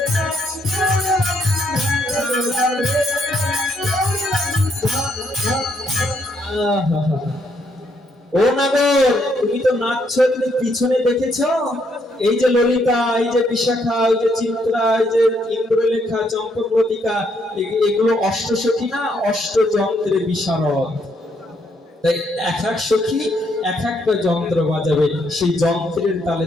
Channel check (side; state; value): both; normal; correlation 0.73